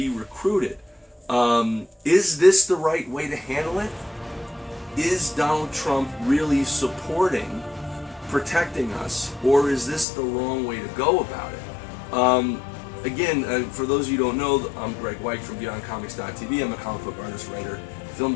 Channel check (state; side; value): drops out; right; at 10.1 s